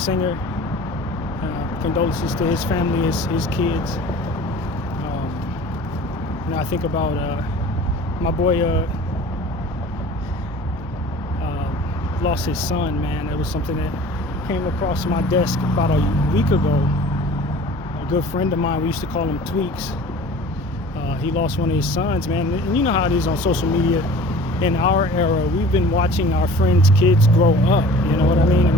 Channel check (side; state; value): both; normal; correlation 0.44